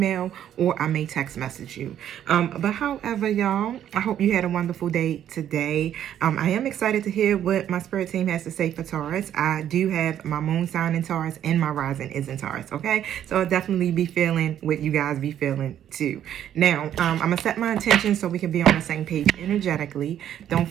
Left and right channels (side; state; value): left; quieter; 10.5 dB